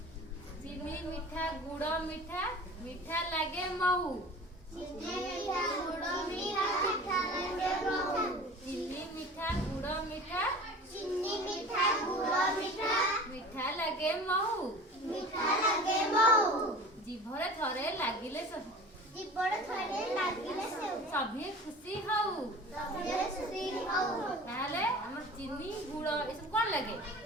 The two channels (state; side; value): normal; both; correlation 0.39